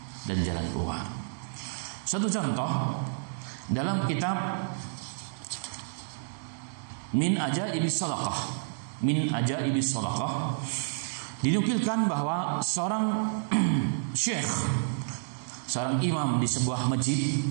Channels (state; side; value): silent; left; digital silence